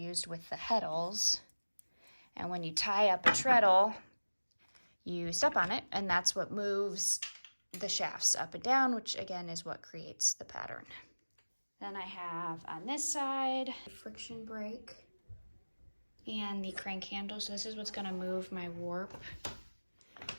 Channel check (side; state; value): both; inverted; correlation -1.00